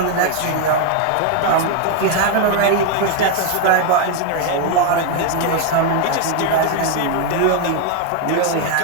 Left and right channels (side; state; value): both; different; correlation 0.01